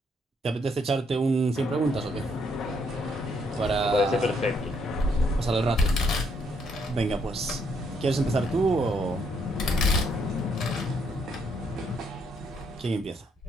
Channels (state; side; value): normal; both; correlation 0.72